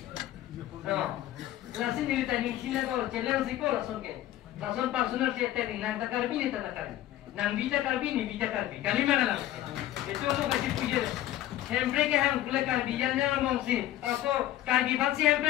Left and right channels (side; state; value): right; quieter; 13.6 dB